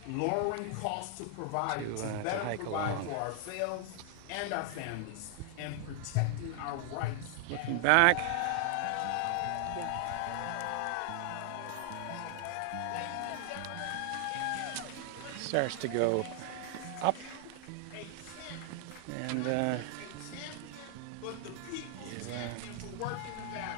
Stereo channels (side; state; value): both; different; correlation 0.00